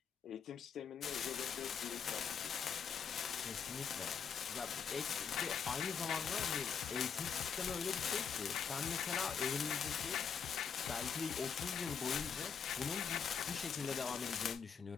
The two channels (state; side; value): quieter; right; 6.9 dB